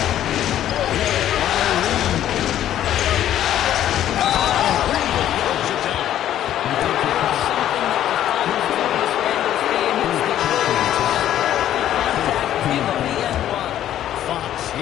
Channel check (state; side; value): quieter; right; 11.7 dB